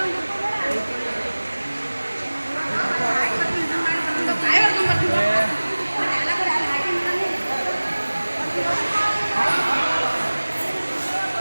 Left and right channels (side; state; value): both; inverted; correlation -1.00